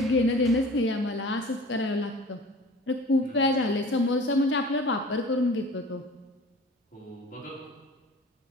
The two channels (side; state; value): both; normal; correlation 0.43